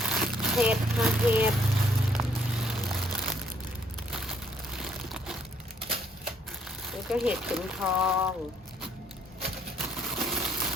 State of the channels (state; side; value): normal; both; correlation 0.68